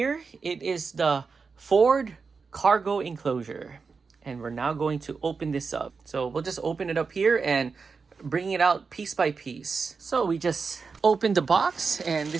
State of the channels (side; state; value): left; quieter; 4.9 dB